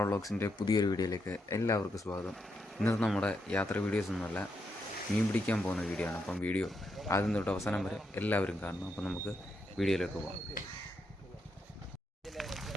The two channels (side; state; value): both; normal; correlation 0.81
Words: വ്ളോഗ്സിൻ്റെ പുതിയൊരു വീഡിയോയിലേക്ക് എല്ലാവർക്കും സ്വാഗതം. ഇന്നത്തെ നമ്മുടെ യാത്ര വീഡിയോസ് ഒന്നുമല്ല, മീൻ പിടിക്കാൻ പോകുന്ന വീഡിയോ ആണ്. അപ്പം വീഡിയോ ആദ്യം തൊട്ട് അവസാനം വരെ എല്ലാവരും കാണണം. അപ്പം നമുക്ക് വീഡിയോയിലേക്ക് പോകാം.